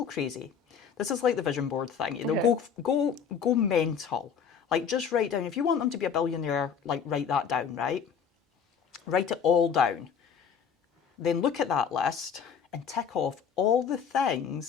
crazy. This is like the vision board thing. You know, go mental. Like, just write down, if you want them to be a billionaire, like, write that down, right? Write it all down. Then look at that list and tick off all the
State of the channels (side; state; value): right; quieter; 7.0 dB